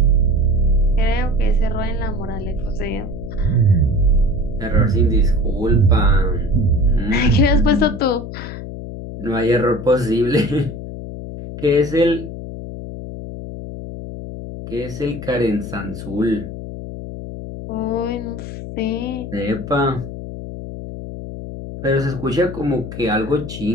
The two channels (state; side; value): noise; left; hum, 9 dB below the sound